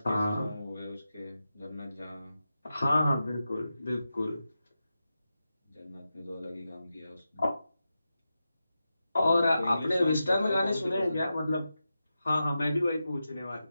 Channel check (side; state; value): both; inverted; correlation -0.91